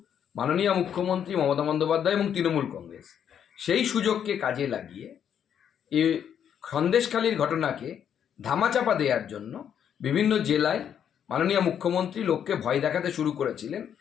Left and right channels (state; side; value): quieter; right; 8.8 dB